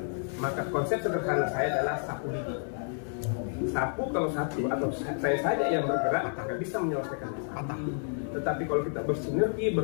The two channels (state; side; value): silent; right; 58 dB below the other